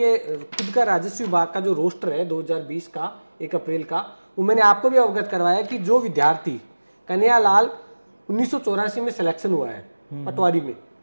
खुद का राजस्व विभाग का जो रोस्टर है 2020 का 1 अप्रैल का, वो मैंने आपको भी अवगत करवाया कि जो विद्यार्थी कन्हैयालाल 1984 में सिलेक्शन हुआ है पटवारी में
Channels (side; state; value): both; inverted; correlation -1.00